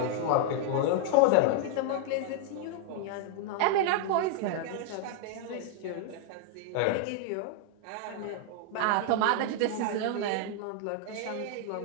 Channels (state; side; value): different; both; correlation 0.00